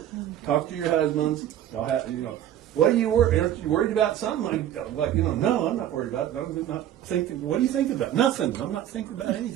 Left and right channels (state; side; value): quieter; left; 11.4 dB